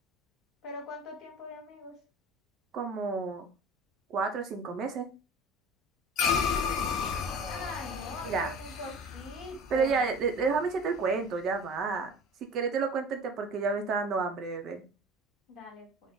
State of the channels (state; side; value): normal; both; correlation 0.39